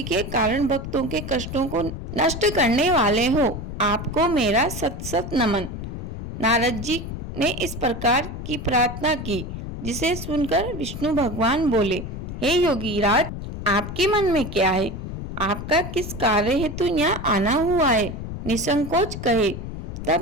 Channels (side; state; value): left; noise; rumble, 7 dB below the sound